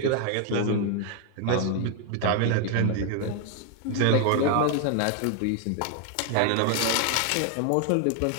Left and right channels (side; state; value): both; different; correlation 0.00